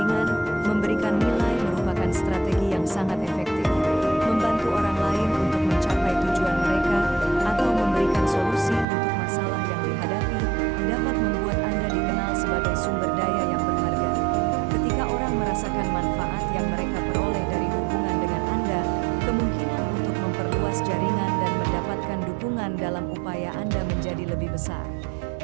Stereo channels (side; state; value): left; drops out; at 8.8 s